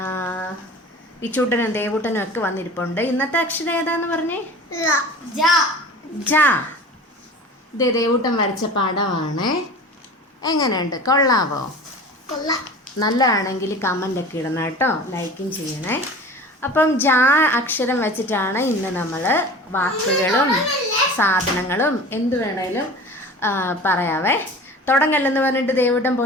വിച്ചൂട്ടനും ദേവൂട്ടനും ഒക്കെ വന്നിരിപ്പുണ്ട്. ഇന്നത്തെ അക്ഷരം ഏതാന്ന് പറഞ്ഞേ? ജ. ഇതേ ദേവൂട്ടൻ വരച്ച പടമാണ്. എങ്ങനെയുണ്ട്? കൊള്ളാവോ? നല്ലതാണെങ്കിൽ കമൻ്റ് ഒക്കെ ഇടണം കേട്ടോ, ലൈക്കും ചെയ്യണേ. അപ്പം ജ അക്ഷരം വെച്ചിട്ടാണ് ഇന്ന് നമ്മൾ വാക്കുകളും സാധനങ്ങളും എന്ത് വേണേലും പറയാവേ. തുടങ്ങല്ലെന്ന് പറഞ്ഞിട്ട് ദേവൂട്ടൻ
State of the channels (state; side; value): normal; both; correlation 0.38